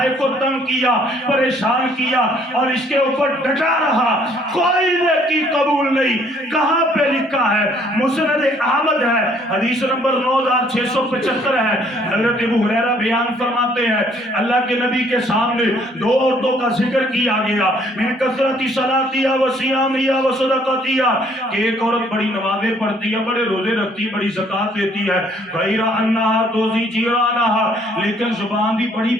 کو تنگ کیا، پریشان کیا اور اس کے اوپر ڈٹا رہا، کوئی نیکی قبول نہیں۔ کہاں پہ لکھا ہے؟ مسند احمد ہے، حدیث نمبر 9675 ہے، ہے۔ حضرت ابو ہریرہ بیان فرماتے ہیں اللہ کے نبی کے سامنے دو عورتوں کا ذکر کیا گیا، من کثرت صلاتیا و صیامیا و صدقاتیا، کہ ایک عورت بڑی نمازیں پڑھتی ہے، بڑے روزے رکھتی ہے، بڑی زکات دیتی ہے، غیر انہا توزی جیرانہا، لیکن زبان بھی بڑی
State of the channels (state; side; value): normal; both; correlation 0.62